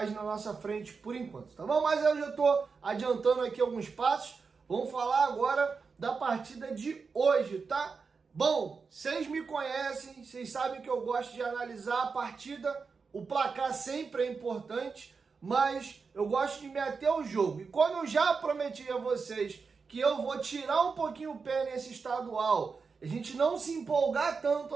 na nossa frente por enquanto, tá bom? Mas eu já estou adiantando aqui alguns passos. Vamos falar agora da partida de hoje, tá? Bom, vocês me conhecem, vocês sabem que eu gosto de analisar a partida. O placar sempre é importante, mas eu gosto de me ater ao jogo. E quando eu já prometi a vocês que eu vou tirar um pouquinho o pé nesse estadual, a gente não se empolgar tanto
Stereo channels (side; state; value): left; quieter; 5.0 dB